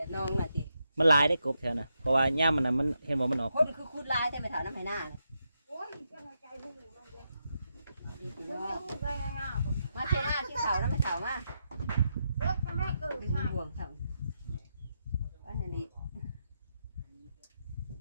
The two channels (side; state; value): both; inverted; correlation -0.83